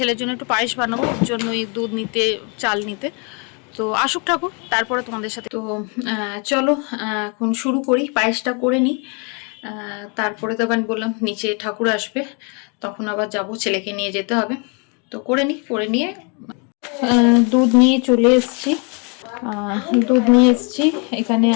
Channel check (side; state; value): right; quieter; 34.8 dB